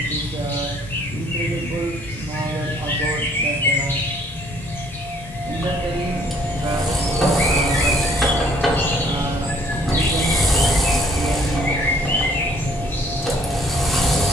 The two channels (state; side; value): normal; both; correlation 0.61